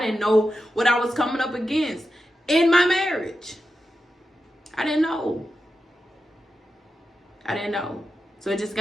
know what I was coming up against in my marriage. I didn't know. So it just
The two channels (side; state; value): both; normal; correlation 0.90